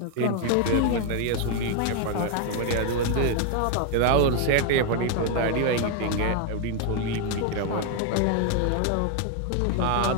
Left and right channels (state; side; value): different; both; correlation 0.01